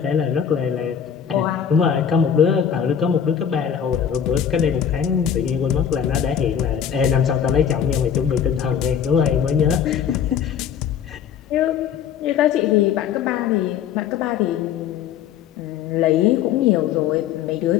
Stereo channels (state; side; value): quieter; right; 8.4 dB